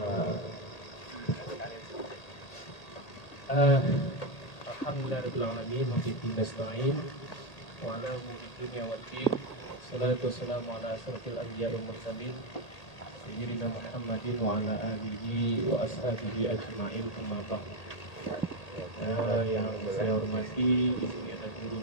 Alhamdulillahirabbil alamin wa bihi nasta'in wa ala umuri dunya waddin. Salatu wassalamu ala asyrafil anbiya'i wal mursalin sayyidina Muhammadin wa ala alihi wa ashabihi ajma'in. Amma ba'd. Yang saya hormati, di sini ada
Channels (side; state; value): right; late; 1.8 ms